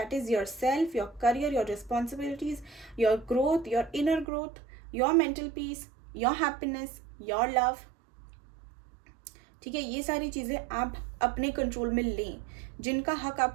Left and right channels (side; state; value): left; drops out; at 4.2 s